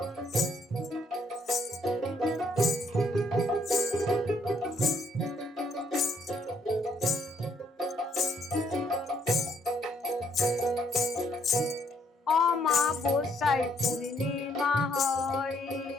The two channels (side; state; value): both; normal; correlation 0.69